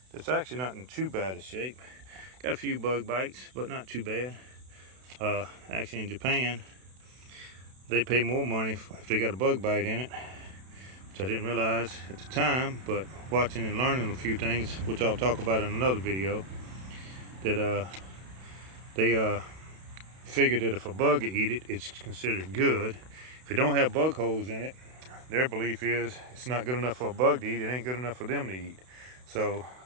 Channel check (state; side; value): late; left; 32 ms